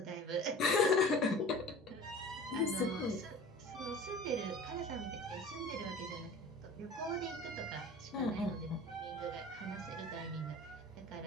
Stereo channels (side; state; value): both; normal; correlation 0.41